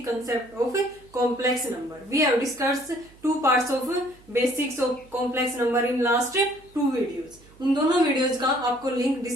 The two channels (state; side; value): noise; right; hum, 27 dB below the sound